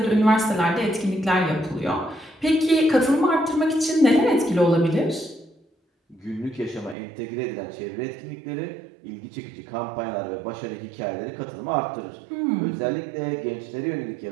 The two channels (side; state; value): left; drops out; at 7.0 s